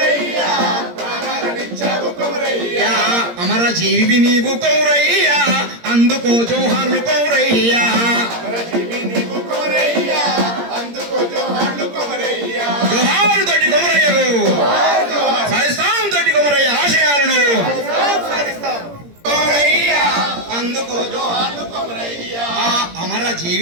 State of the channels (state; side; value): late; left; 17 ms